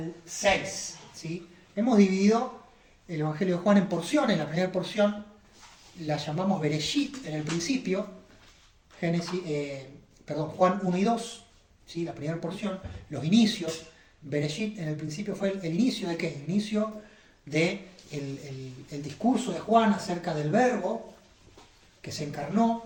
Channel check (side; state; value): both; identical; correlation 1.00